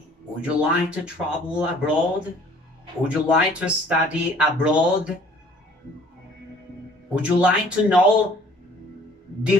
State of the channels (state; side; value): normal; both; correlation 0.54